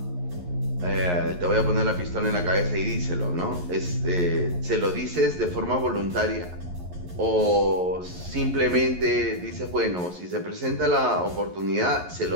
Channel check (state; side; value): late; left; 11 ms